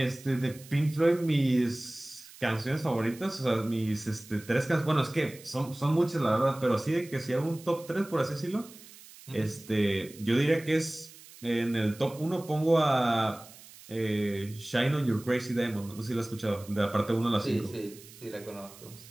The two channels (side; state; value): right; noise; hiss, 20 dB below the sound